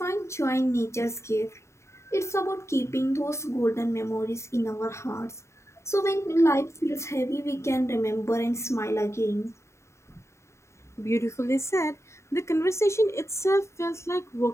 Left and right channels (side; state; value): right; late; 0.14 ms